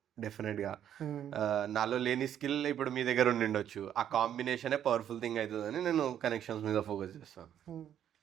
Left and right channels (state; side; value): quieter; left; 10.0 dB